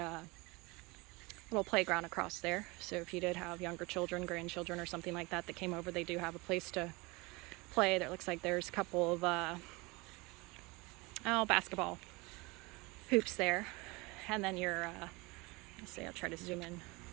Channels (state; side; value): quieter; left; 25.0 dB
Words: little playground across there. So if you did have younger children, grandchildren, or something like that came over, they do have a place to play. There looks like there's a couple of basketball hoops there. And then your, let's see, I'll try to zoom in.